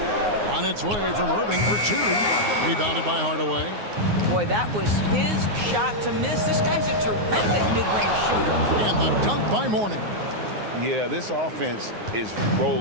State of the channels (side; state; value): left; late; 9.6 ms